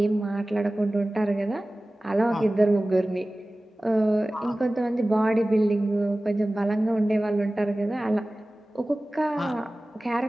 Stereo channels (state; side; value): normal; both; correlation 0.97